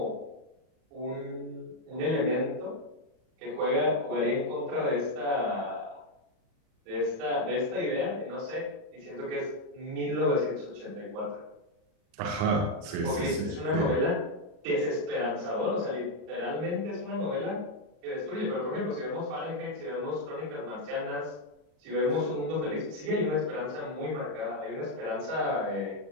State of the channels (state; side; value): late; left; 39 ms